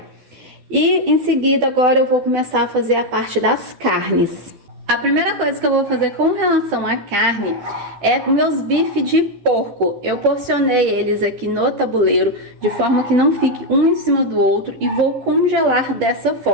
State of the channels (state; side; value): late; left; 12 ms